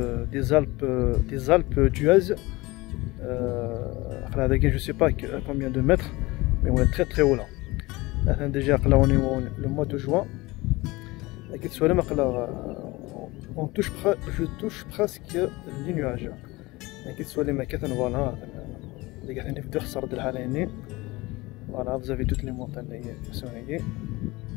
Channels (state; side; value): quieter; right; 21.8 dB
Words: Alpes d'Huez. Je ne sais pas à combien de mètres, mais on est très très haut là. Déjà, on est le mois de juin. Je touche presque les nuages. Voilà, vous avez toutes les montagnes qui sont ici.